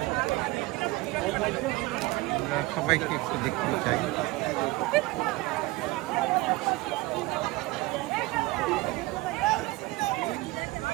আমরা সবাইকে একটু দেখতে চাই।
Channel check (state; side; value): quieter; left; 20.8 dB